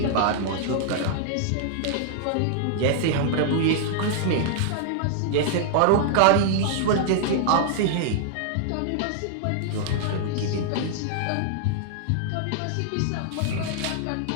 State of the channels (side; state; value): both; different; correlation -0.01